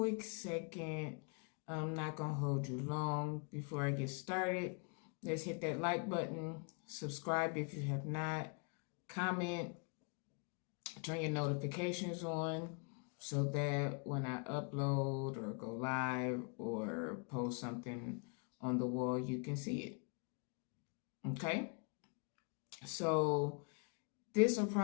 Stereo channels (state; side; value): quieter; right; 37.4 dB